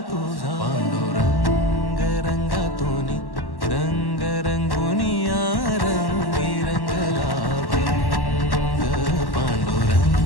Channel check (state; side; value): late; right; 1.1 ms